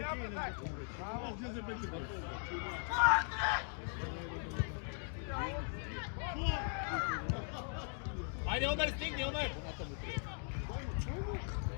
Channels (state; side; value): silent; right; 51 dB below the other